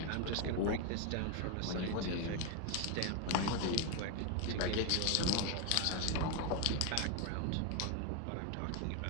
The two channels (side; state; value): both; different; correlation 0.01